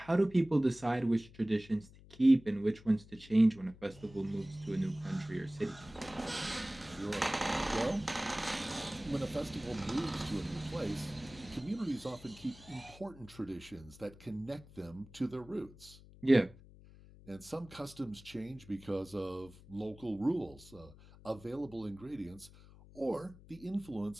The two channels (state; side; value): noise; left; hum, 21 dB below the sound